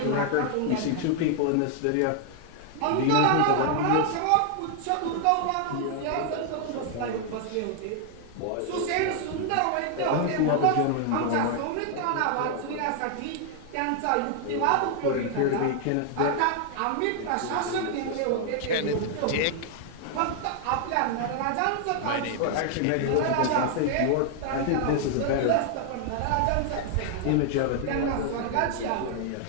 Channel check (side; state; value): both; different; correlation 0.00